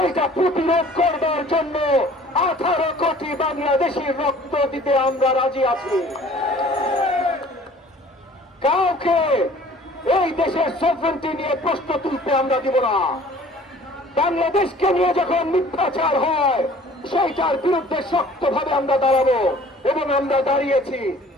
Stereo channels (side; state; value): both; normal; correlation 0.50